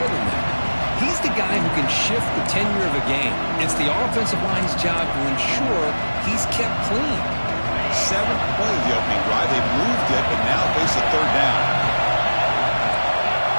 than that. He's the guy who can shift the tenure of a game. It's the offensive line's job to ensure he's kept clean. 7th play of the opening drive. They moved it, but now face a third down.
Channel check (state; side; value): inverted; both; correlation -1.00